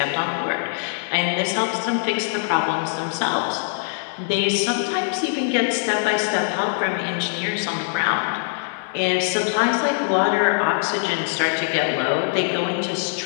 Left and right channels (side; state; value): right; silent; digital silence